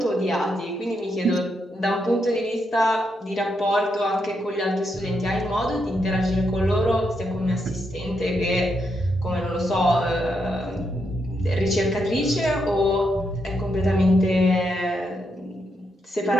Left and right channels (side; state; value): both; normal; correlation 0.81